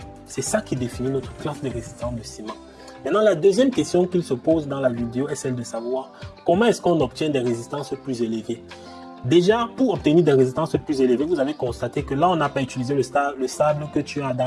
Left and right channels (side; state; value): both; identical; correlation 1.00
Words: C'est ça qui définit notre classe de résistance de ciment. Maintenant, la deuxième question qu'il se pose dans la vidéo est celle de savoir comment est-ce qu'on obtient des résistances plus élevées. Déjà, pour obtenir des résistances plus élevées, vous avez constaté que là, on n'a pas utilisé le sable que tu as